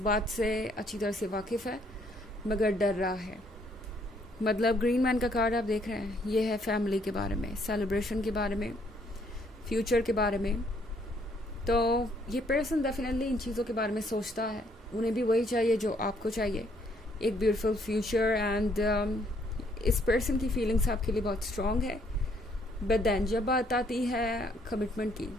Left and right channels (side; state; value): both; normal; correlation 0.67